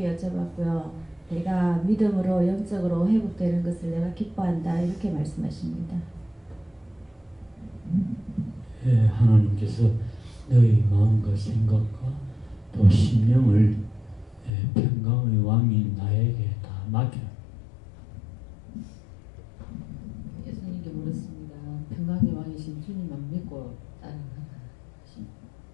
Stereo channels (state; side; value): drops out; right; at 14.5 s